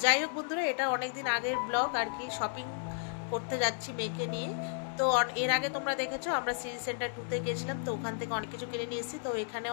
যাই হোক বন্ধুরা, এটা অনেক দিন আগের ব্লগ আর কি। শপিং করতে যাচ্ছি মেয়েকে নিয়ে। তো এর আগে তোমরা দেখেছো আমরা সিটি সেন্টার 2-তে গেছিলাম, তো ওখান থেকে অনেক কিছু কিনে নিয়ে এসেছি। তো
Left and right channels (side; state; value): right; silent; digital silence